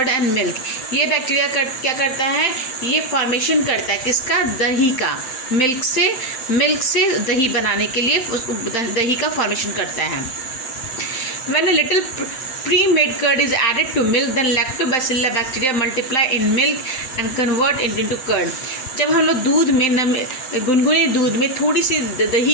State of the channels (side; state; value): right; late; 7.7 ms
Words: and milk. ये बैक्टीरिया क्या करता है, ये फॉर्मेशन करता है किसका, दही का। मिल्क से दही बनाने के लिए दही का फॉर्मेशन करता है। When a little pre-made curd is added to milk, then lactobacillus bacteria multiply in milk and convert it into curd. जब हम लोग दूध में गुनगुने दूध में थोड़ी सी